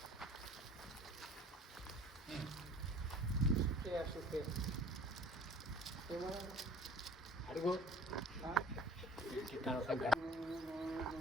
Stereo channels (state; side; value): normal; both; correlation 0.48